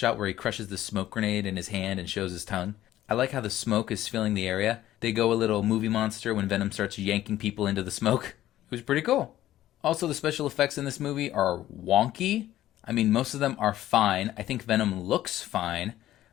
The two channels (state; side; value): quieter; right; 13.6 dB